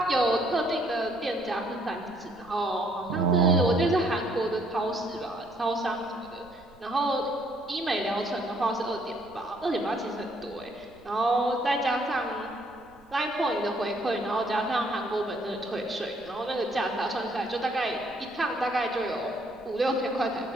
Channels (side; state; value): right; noise; rumble, 27 dB below the sound